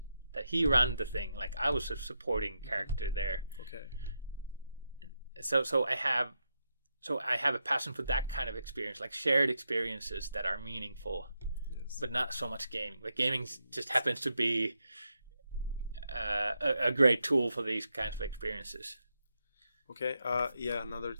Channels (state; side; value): inverted; both; correlation -0.83